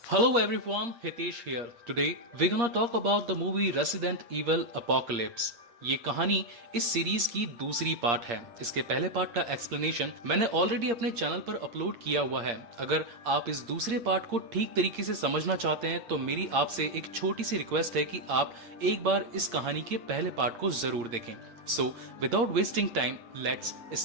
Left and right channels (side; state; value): left; late; 8.6 ms